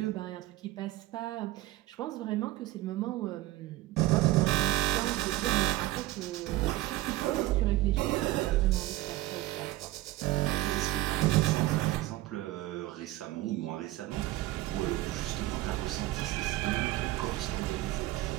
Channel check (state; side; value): quieter; left; 17.3 dB